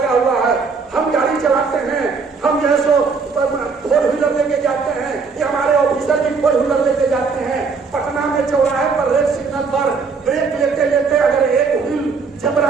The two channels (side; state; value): left; quieter; 4.9 dB